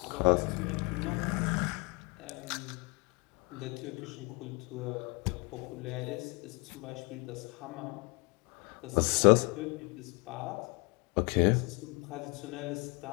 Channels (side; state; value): right; quieter; 30.1 dB